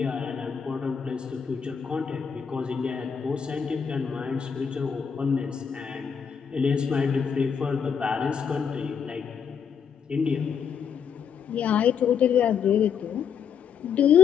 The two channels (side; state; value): right; quieter; 7.0 dB